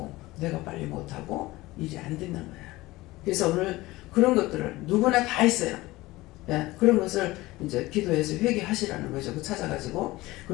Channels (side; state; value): right; quieter; 19.3 dB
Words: 내가 빨리 못하고 일이 안 되는 거야. 그래서 오늘 그런 것들을 누구나 다 있어요. 예, 그런 것을 이제 기도해서 회개하시라는 거죠. 그 찾아가지고